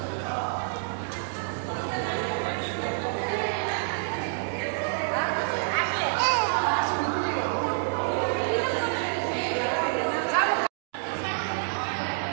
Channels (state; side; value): silent; left; digital silence